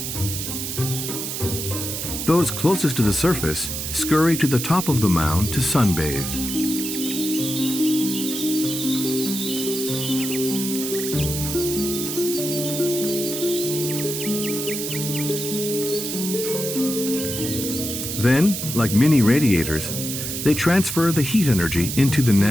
Those closest to the surface scurry to the top of the mound to sunbathe. Then, like mini radiators, they transfer the heat energy into the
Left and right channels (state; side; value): noise; right; hiss, 4 dB below the sound